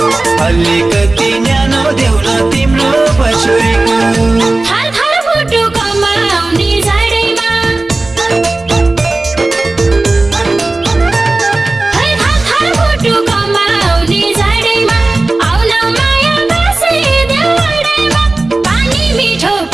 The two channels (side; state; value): left; quieter; 3.1 dB